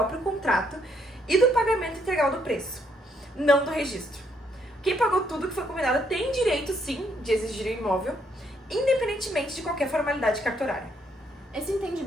contrato e do pagamento integral do preço, não do registro. Quem pagou tudo que foi combinado tem direito, sim, de exigir o imóvel, independentemente de qualquer formalidade cartorária. Esse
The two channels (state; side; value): normal; both; correlation 0.72